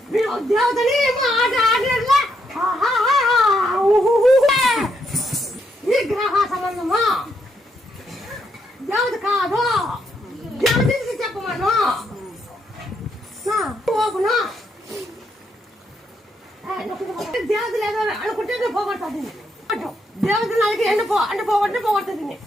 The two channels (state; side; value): normal; both; correlation 0.77